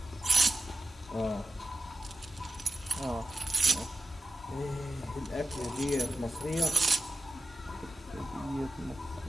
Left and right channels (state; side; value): normal; both; correlation 0.91